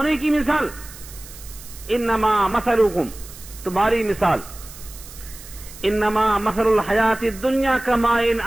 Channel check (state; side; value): noise; right; hiss, 17 dB below the sound